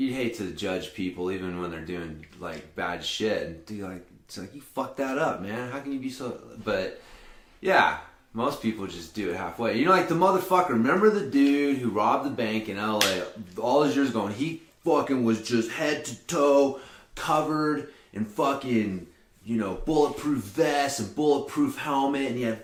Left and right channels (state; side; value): identical; both; correlation 1.00